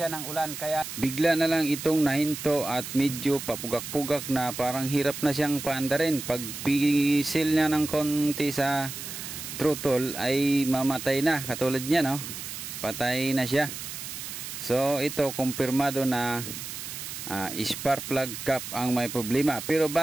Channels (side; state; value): right; noise; hiss, 8 dB below the sound